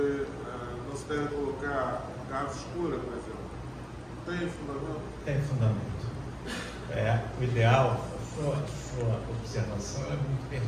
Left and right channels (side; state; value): both; identical; correlation 1.00